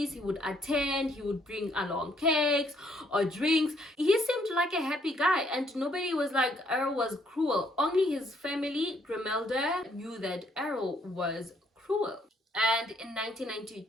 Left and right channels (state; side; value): normal; both; correlation 0.68